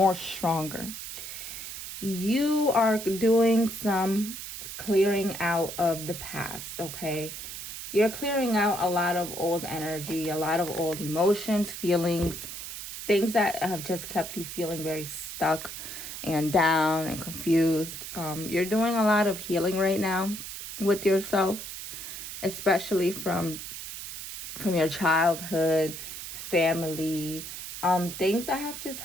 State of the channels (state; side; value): noise; right; hiss, 9 dB below the sound